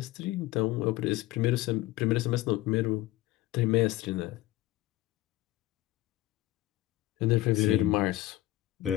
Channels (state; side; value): quieter; right; 16.8 dB